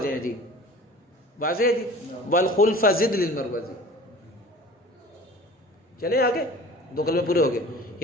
ہیں جی. واضح ہے جی. والخلف زد للمروزی. چلیں آگے. 2 کلمے پورے ہو گئے.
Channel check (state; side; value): normal; both; correlation 0.42